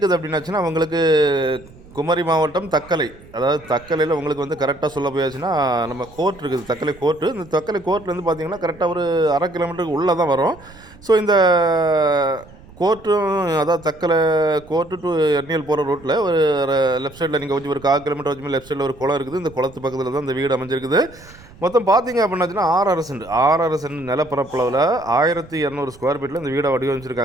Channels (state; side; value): noise; right; rumble, 22 dB below the sound